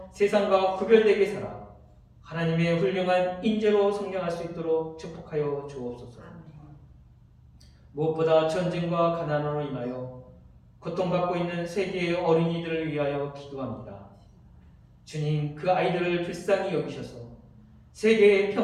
세상과 구별되게 살아 하나님의 훌륭한 인재로 성장할 수 있도록 축복하여 주옵소서. 무엇보다 전쟁과 가난으로 인하여 고통받고 있는 세계의 어린이들을 위하여 기도합니다. 주님, 그 아이들을 불쌍히 여기셔서 세계의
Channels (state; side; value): identical; both; correlation 1.00